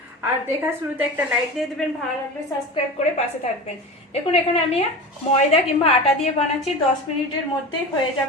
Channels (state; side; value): normal; both; correlation 0.30